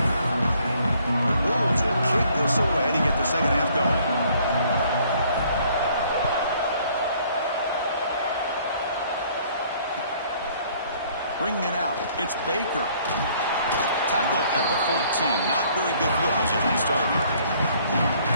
The Bulls will kick this away to get the second half going. Bringing it out, it's Baker. Tackle at the 14. Not very good field position to start here.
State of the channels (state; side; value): inverted; both; correlation -0.61